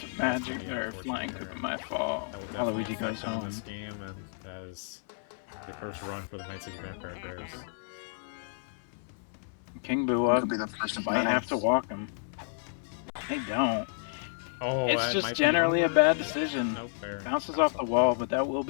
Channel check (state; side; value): silent; right; 55 dB below the other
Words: Magic or Flying Koopa. My fault. Waluigi goes home. This game, and that is the first run for the Night City Vampire Bears. King Boo up. Might have to walk him. They don't. Oh, it's just generally a bad decision. Nope, fair. Bounces off the wall, but that will